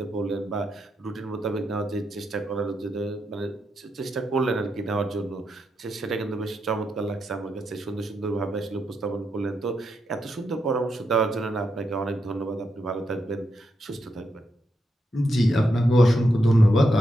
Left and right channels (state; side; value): normal; both; correlation 0.83